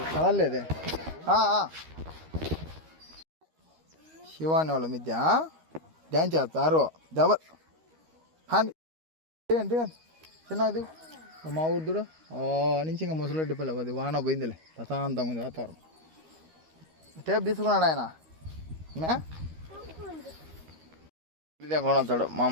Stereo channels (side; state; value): left; late; 13 ms